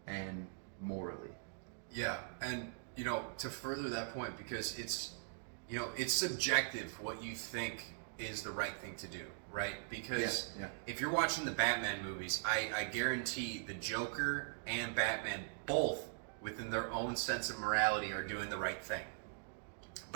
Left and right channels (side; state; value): left; silent; digital silence